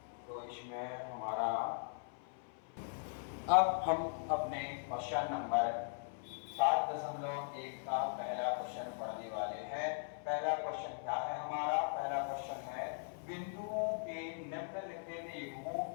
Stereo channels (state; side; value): silent; right; 51 dB below the other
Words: तो इसमें हमारा अब हम अपने क्वेश्चन नंबर 7.1 का पहला क्वेश्चन पढ़ने वाले हैं। पहला क्वेश्चन क्या है हमारा? पहला क्वेश्चन है बिंदुओं के निम्नलिखित युग्मों